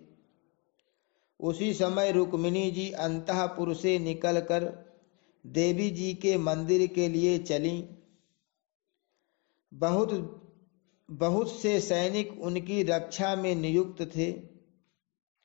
उसी समय रुक्मिणी जी अंतःपुर से निकलकर देवी जी के मंदिर के लिए चलीं। बहुत से सैनिक उनकी रक्षा में नियुक्त थे।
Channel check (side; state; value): right; quieter; 32.0 dB